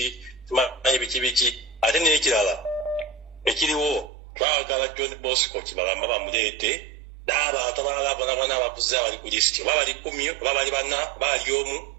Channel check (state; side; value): drops out; left; at 4.1 s